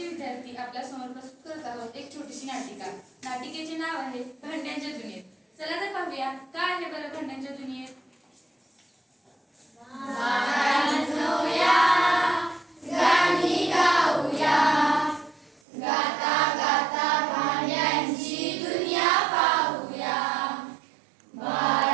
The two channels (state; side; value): drops out; left; at 15.6 s